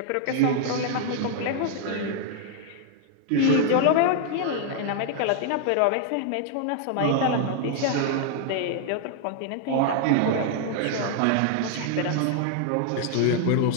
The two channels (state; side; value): different; both; correlation 0.00